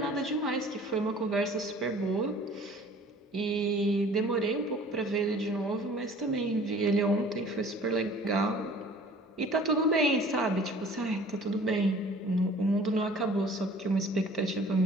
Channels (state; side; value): normal; both; correlation 0.49